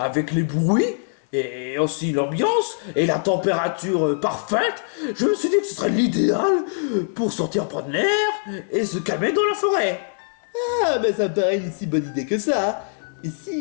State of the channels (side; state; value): right; silent; digital silence